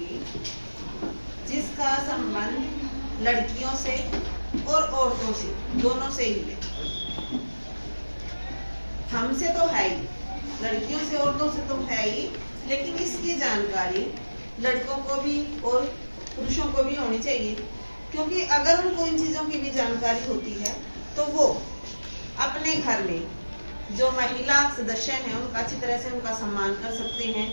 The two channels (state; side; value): inverted; both; correlation -1.00